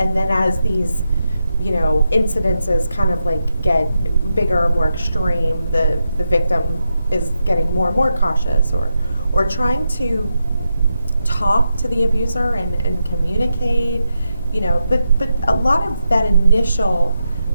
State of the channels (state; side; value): inverted; both; correlation -0.86